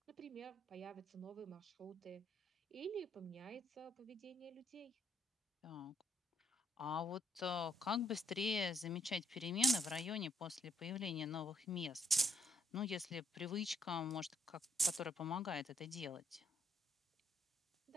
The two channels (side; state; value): both; normal; correlation 0.74